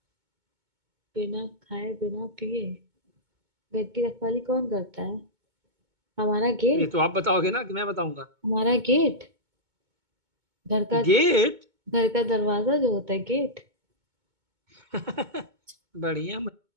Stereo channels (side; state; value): left; late; 2.2 ms